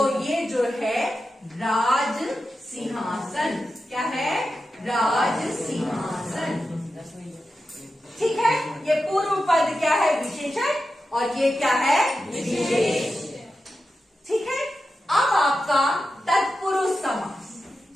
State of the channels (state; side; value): normal; both; correlation 0.90